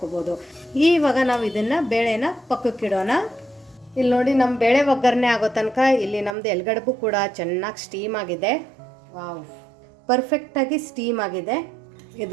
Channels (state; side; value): drops out; left; at 6.4 s